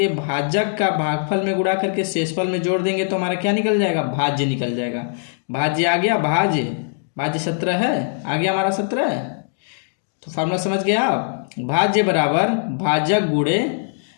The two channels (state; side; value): silent; right; digital silence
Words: भाजक का भागफल में गुणा करके शेषफल में जोड़ देंगे, तो हमारा क्या निकल जाएगा, भाज्य निकल जाएगा। भाज्य आ गया, भाज्य 17 है, आ गया हमारा 17 है। तो फार्मूला समझ गया आप, भाज्य बराबर भाजक गुणे